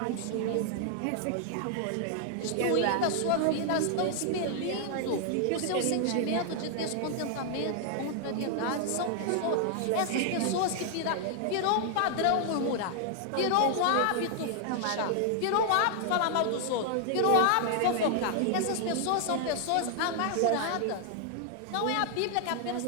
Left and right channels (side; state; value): both; different; correlation 0.00